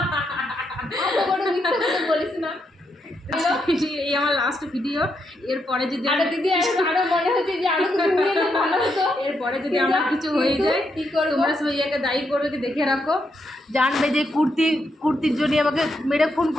বলিস না। এই আমার লাস্ট ভিডিও, এরপরে যদি দিদি আরো মনে হচ্ছে যে আরো কিছু নিয়ে এলে ভালো হতো। এরপরে যদি আমার কিছু হয়ে যায় কি করবো? তোমরা সবাই একে দায়ী করবে, কি দেখে রাখো, জানবে যে কুর্তির জন্য আমাকে মেরে খুন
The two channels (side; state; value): both; normal; correlation 0.80